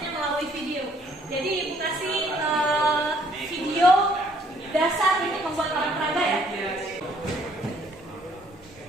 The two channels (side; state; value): both; normal; correlation 0.64